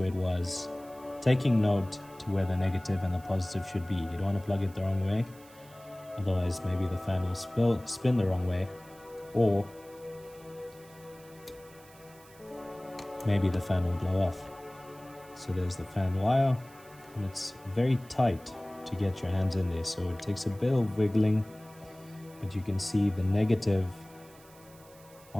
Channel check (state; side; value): noise; right; hiss, 24 dB below the sound